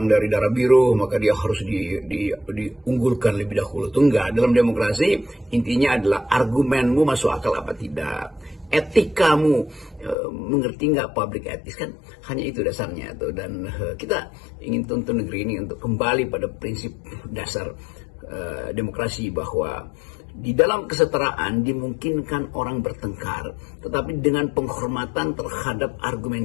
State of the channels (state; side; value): drops out; right; at 10.2 s